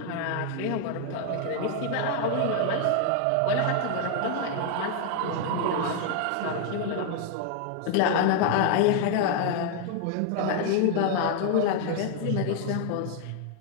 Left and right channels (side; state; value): both; different; correlation 0.00